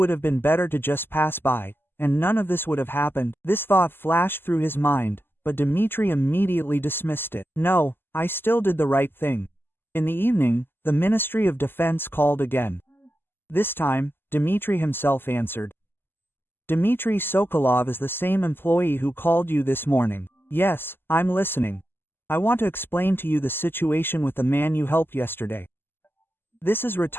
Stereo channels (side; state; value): right; late; 0.10 ms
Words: have been better to just pass by, and none of this would have happened. This thought flashed through his mind, but Dimitri immediately dismissed it. No, I still did the right thing. In the evening, the Ministry of Defense called again. This time, Dmitry himself answered. Dmitry Sokolov is the same employee who called you this morning. Yes, I'm listening. I want to explain to you the situation with the man you helped yesterday. This is